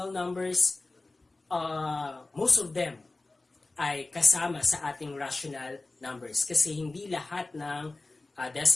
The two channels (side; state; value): right; quieter; 3.2 dB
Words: numbers, most of them ay kasama sa ating rational numbers kasi hindi lahat ng